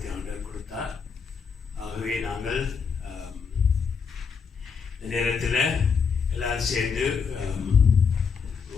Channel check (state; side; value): quieter; right; 5.9 dB